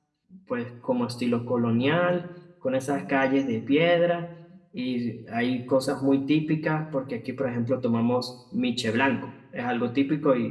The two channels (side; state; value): both; identical; correlation 1.00